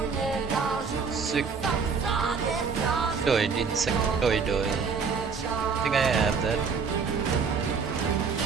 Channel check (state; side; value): quieter; left; 5.5 dB